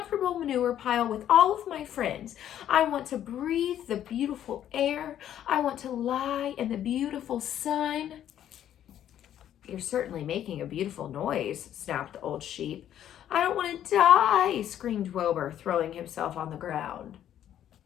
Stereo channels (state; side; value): quieter; right; 10.9 dB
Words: manure pile with all of my friends. I want to breathe the beautiful air. I want to lie in the beautiful sun. You're certainly making a beautiful noise, snapped the old sheep. I don't want to die, screamed Wilbur, throwing himself on the ground.